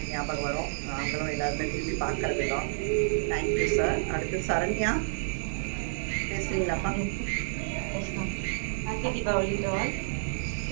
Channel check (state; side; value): silent; left; digital silence